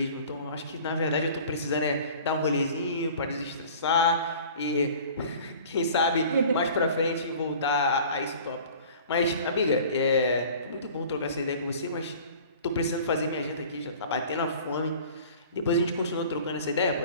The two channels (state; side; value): inverted; both; correlation -0.45